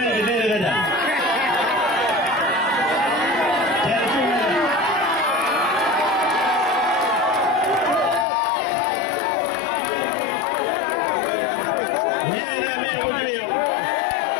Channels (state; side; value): drops out; right; at 8.2 s